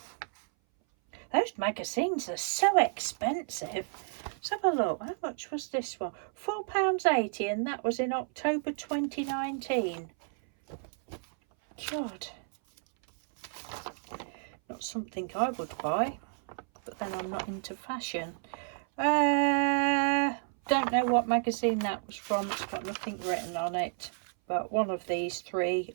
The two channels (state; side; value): silent; left; 57 dB below the other